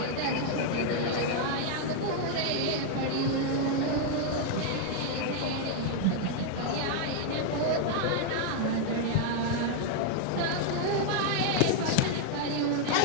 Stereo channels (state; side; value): different; both; correlation 0.00